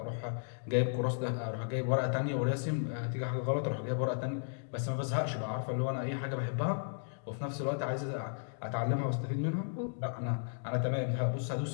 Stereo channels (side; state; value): right; silent; digital silence